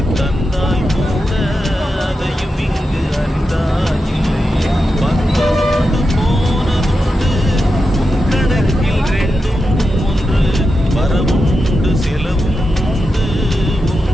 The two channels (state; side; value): normal; both; correlation 0.89